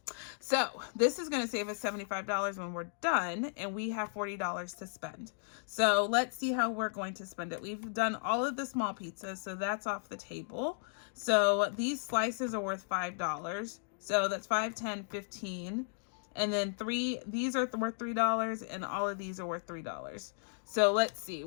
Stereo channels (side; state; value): right; silent; digital silence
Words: So this is going to save us $75 when we're done, and we have $40 to spend. So let's see how we're going to spend it. We've done all of the small pizzas, so that's off the table. So these slices are worth $5. So that's 5, 10, 15. And then these are worth $3, and all of these are worth $3. So let's see.